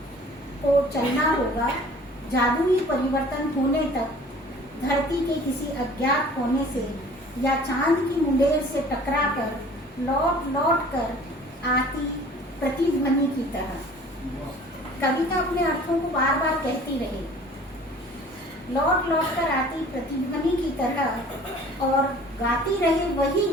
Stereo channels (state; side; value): normal; both; correlation 0.48